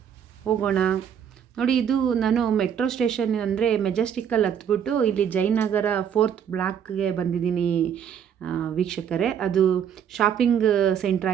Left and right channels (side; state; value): left; quieter; 8.5 dB